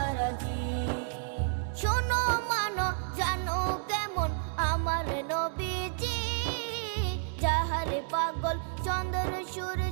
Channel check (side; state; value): left; silent; 57 dB below the other